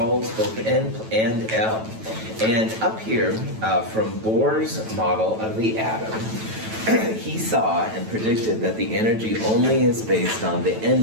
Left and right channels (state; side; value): late; left; 9.1 ms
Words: both N and L. And up here, from Bohr's model of the atom, he saw and predicted that the energy only is based on the